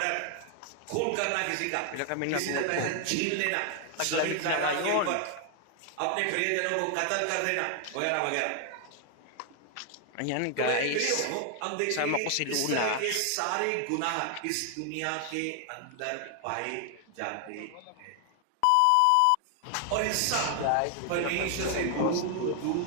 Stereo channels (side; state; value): both; different; correlation 0.00